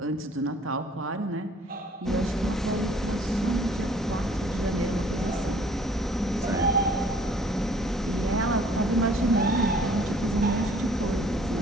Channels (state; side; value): normal; both; correlation 0.56